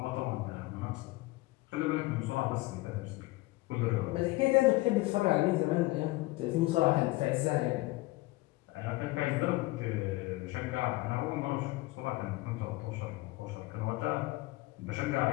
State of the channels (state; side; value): quieter; right; 20.6 dB